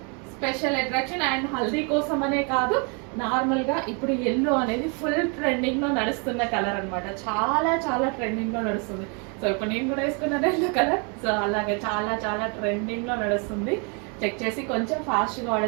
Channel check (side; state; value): left; quieter; 35.0 dB